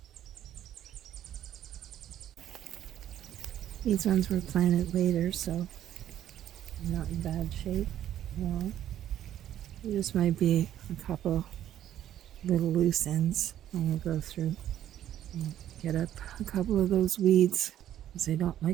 These ones were planted later, so they're not in bad shape. Well, there just might be a couple little loose ends I'm going to go through and get up a couple of those weeds, because they don't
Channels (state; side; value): quieter; left; 11.5 dB